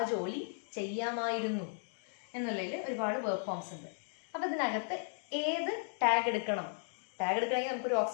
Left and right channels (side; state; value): right; silent; digital silence